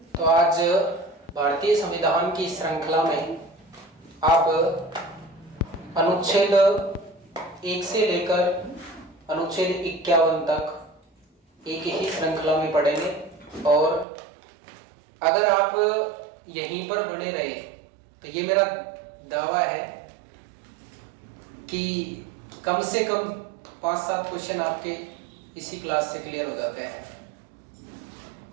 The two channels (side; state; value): left; drops out; at 14.1 s